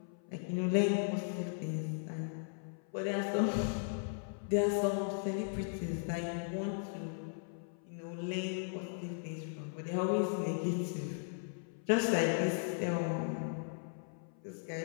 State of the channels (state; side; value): silent; right; 53 dB below the other